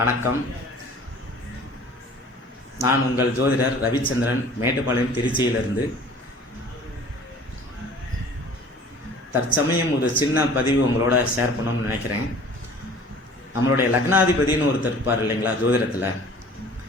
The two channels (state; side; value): normal; both; correlation 0.48